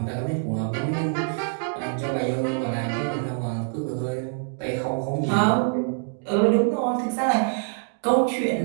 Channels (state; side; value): silent; left; 62 dB below the other